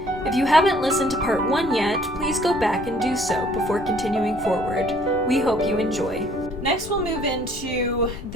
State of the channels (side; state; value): left; noise; rumble, 14 dB below the sound